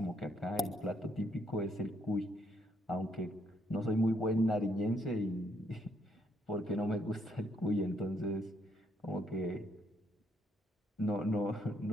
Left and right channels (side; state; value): both; normal; correlation 0.72